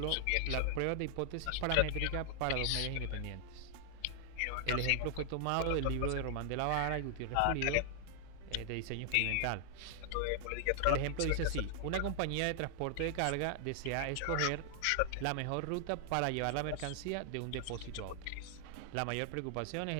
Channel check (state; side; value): different; both; correlation 0.00